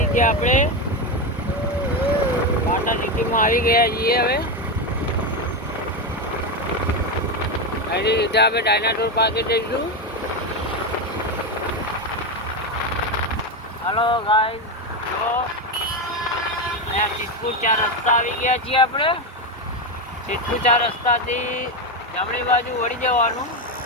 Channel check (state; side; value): normal; both; correlation 0.12